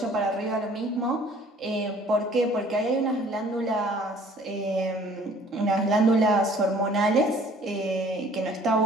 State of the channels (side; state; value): both; normal; correlation 0.54